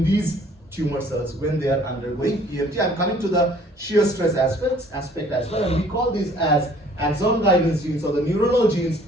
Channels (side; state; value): both; normal; correlation 0.56